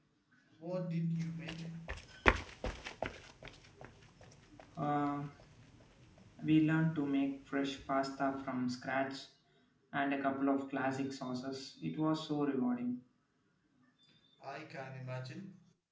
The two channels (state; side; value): identical; both; correlation 1.00